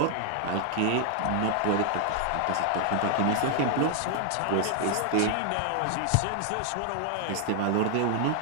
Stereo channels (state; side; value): different; both; correlation 0.00